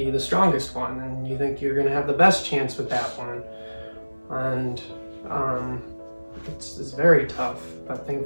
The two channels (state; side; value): inverted; both; correlation -1.00